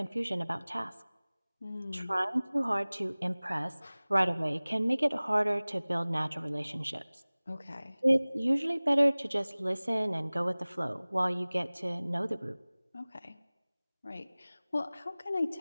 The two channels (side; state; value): both; inverted; correlation -1.00